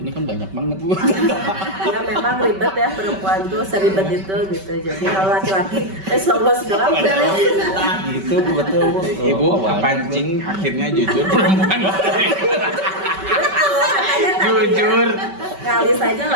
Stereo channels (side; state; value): left; late; 5.2 ms